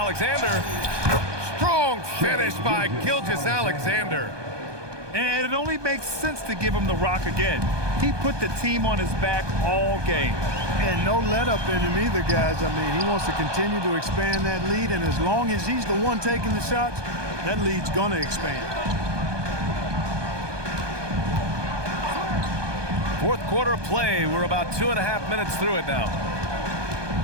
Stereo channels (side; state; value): left; late; 1.2 ms